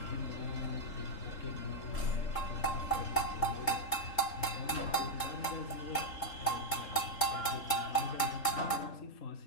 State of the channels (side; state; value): right; late; 3.7 ms